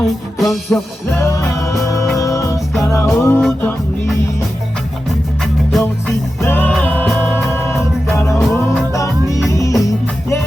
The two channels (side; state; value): both; normal; correlation 0.92